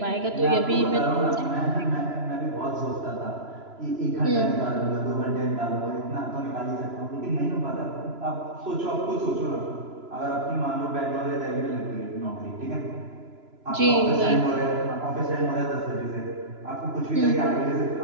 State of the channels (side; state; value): left; late; 3.0 ms